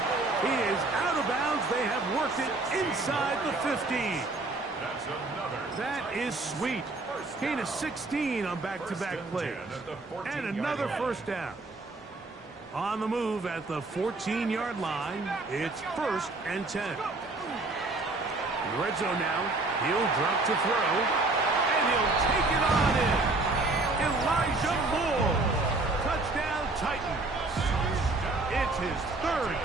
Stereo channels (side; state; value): left; quieter; 3.2 dB